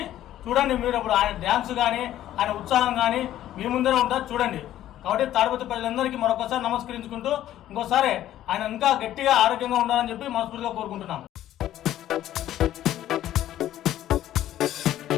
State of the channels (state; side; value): quieter; right; 12.7 dB